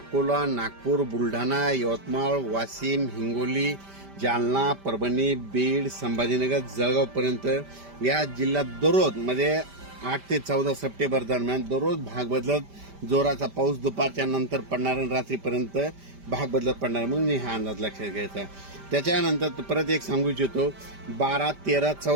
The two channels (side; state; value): left; late; 5.1 ms